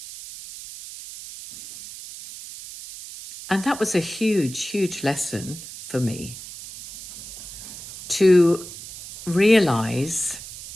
And that was a huge, huge lesson for me, to realize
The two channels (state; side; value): noise; right; hiss, 13 dB below the sound